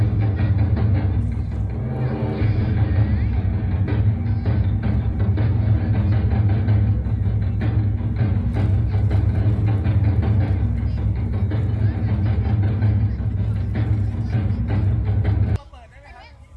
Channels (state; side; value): identical; both; correlation 1.00